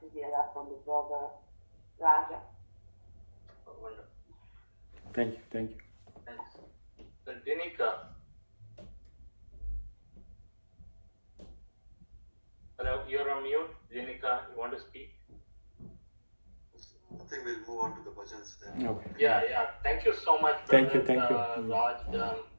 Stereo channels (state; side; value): inverted; both; correlation -1.00